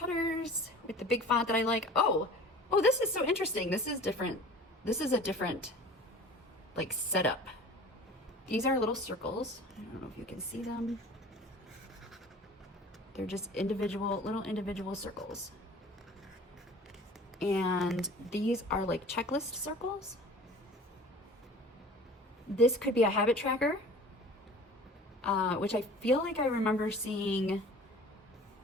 with the big font that I like. Oh, this is so interesting. This is different. This is a different like setup. These are little circles. I don't know if you can see them. They're just little individual circles. And these are like checklist circles. This could be a habit tracker, which I feel like I remember seeing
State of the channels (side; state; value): both; normal; correlation 0.43